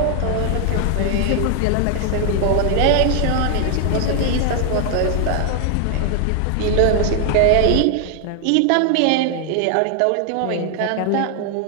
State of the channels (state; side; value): different; both; correlation 0.00